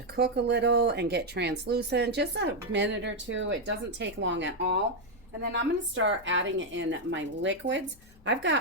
cook a little and get translucent, just a minute or two, it doesn't take long at all. And then I'm going to start adding in my liquids. I've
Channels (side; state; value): left; noise; hum, 27 dB below the sound